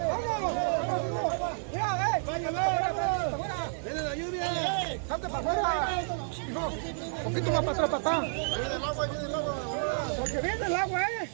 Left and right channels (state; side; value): silent; left; digital silence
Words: ¡Vamos! ¡Mira, ¡viene la lluvia! ¡Salte para afuera! Hijo, un poquito más para atrás, papá. Viene el agua, viene el agua. Porque viene el agua,